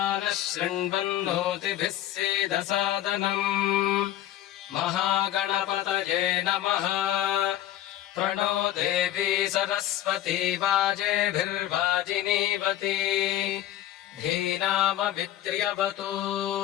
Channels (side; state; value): right; quieter; 12.8 dB